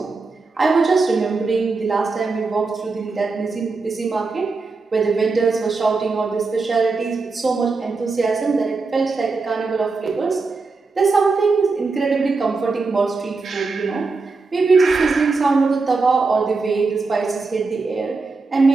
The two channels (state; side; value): quieter; left; 4.1 dB